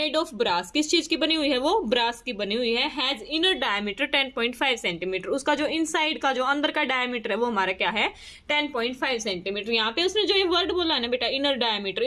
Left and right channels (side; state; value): both; identical; correlation 1.00